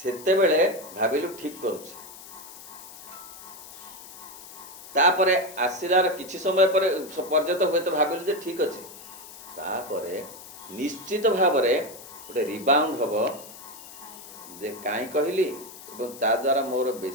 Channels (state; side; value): noise; left; hiss, 16 dB below the sound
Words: बेले भाबिलु ठीक करूछ तापरे आसिलार किछि समय पर पर्यंत होय तो भाबिलु जे ठीक अछि तापरे निश्चित भाव रे गोटे रिबाउंड हब जे काई कहली एवं ता द्वारा मोर